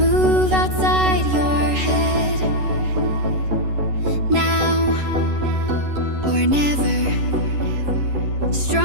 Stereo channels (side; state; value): left; late; 11 ms